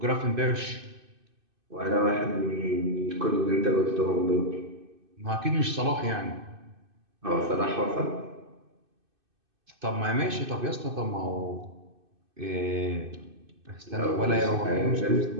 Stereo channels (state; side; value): late; left; 2.6 ms